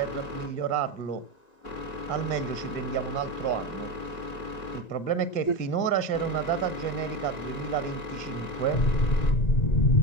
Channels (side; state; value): right; late; 1.9 ms